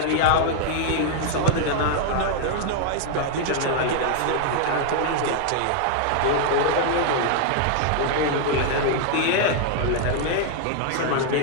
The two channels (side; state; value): both; different; correlation 0.00